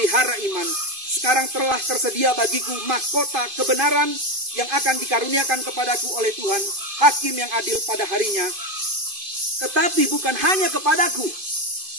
iman. Sekarang telah tersedia bagiku mahkota kebenaran yang akan dikaruniakan kepadaku oleh Tuhan, hakim yang adil pada harinya. Tetapi bukan hanya kepadaku,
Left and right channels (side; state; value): left; late; 2.5 ms